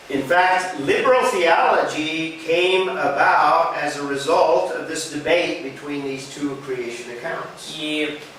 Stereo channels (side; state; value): both; identical; correlation 1.00